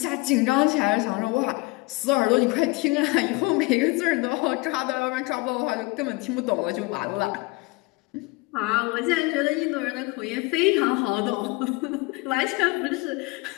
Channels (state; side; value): quieter; right; 24.5 dB